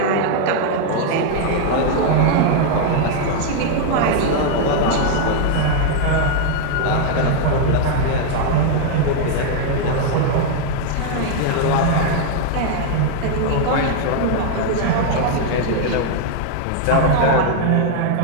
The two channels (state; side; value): different; both; correlation 0.00